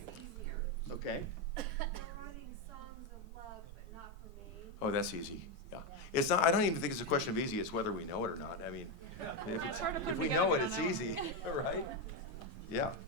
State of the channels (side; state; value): both; normal; correlation 0.08